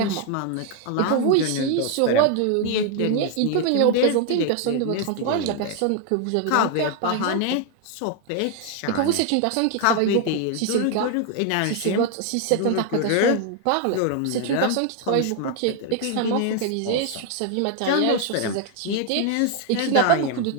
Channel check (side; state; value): both; different; correlation 0.01